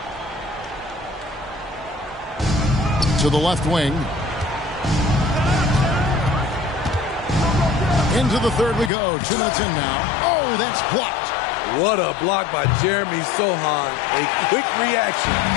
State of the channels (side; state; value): right; drops out; at 8.9 s